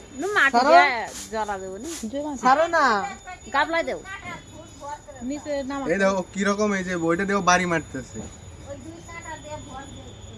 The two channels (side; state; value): both; identical; correlation 1.00